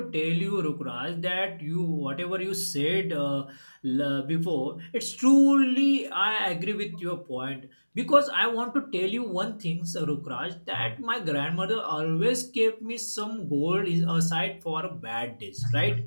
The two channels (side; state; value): both; inverted; correlation -1.00